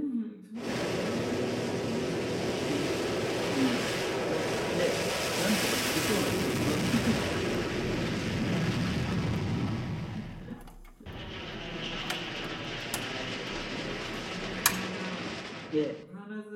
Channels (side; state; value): both; identical; correlation 1.00